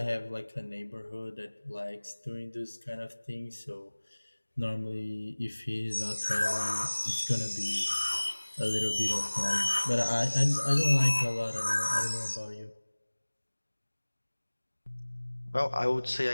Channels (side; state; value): both; inverted; correlation -1.00